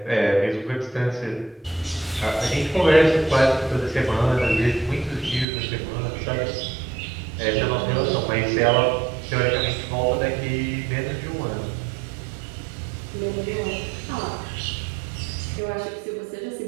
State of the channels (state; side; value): drops out; left; at 5.5 s